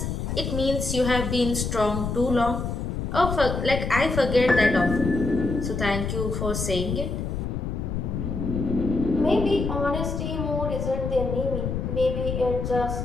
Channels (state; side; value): noise; left; rumble, 3 dB below the sound